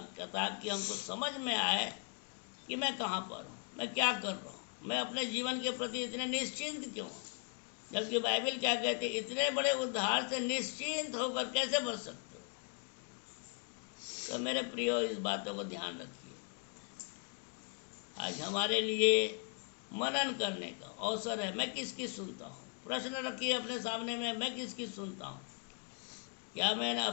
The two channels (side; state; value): right; quieter; 40.0 dB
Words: ताकि हमको समझ में आए कि मैं कहाँ पर हूँ, मैं क्या कर रहा हूँ, मैं अपने जीवन के प्रति इतने निश्चिंत क्यों। जबकि बाइबल क्या कहते हैं, इतने बड़े उद्धार से निश्चिंत होकर कैसे बच सकते हो। तो मेरे प्रियो इस बातों को ध्यान रखिए। आज हमारे लिए मनन करने का अवसर है। मैं किसकी सुनता हूँ? प्रश्न रखिए अपने सामने में, मैं किसकी सुनता हूँ? क्या मैंने